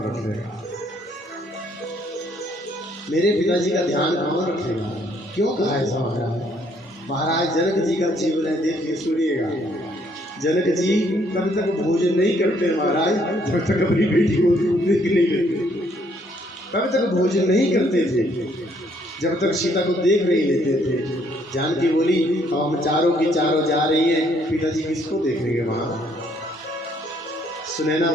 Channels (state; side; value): normal; both; correlation 0.67